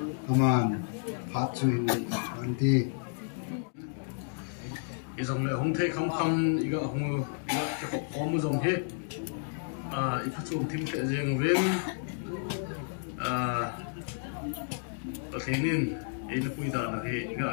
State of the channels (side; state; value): right; silent; digital silence